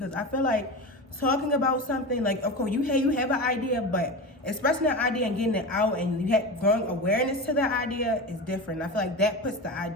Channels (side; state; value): both; normal; correlation 0.25